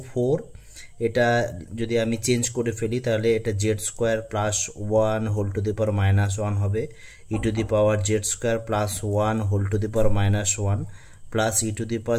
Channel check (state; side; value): identical; both; correlation 1.00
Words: 4। এটা যদি আমি চেঞ্জ করে ফেলি তাহলে এটা Z square plus 1 whole to the power -1 হবে, e⁴z² plus 1 whole to the power -1 plus e⁶